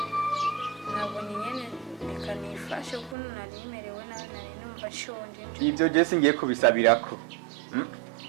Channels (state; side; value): drops out; left; at 3.2 s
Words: nabonye nyene reka nifashe ko narimerewe nawe nari numva nshonje ibyo je singiye kubisabirako